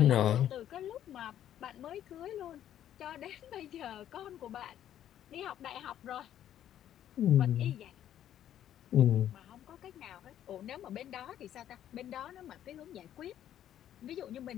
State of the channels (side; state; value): right; quieter; 11.1 dB